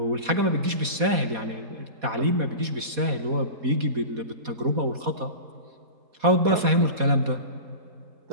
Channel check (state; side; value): late; left; 4.2 ms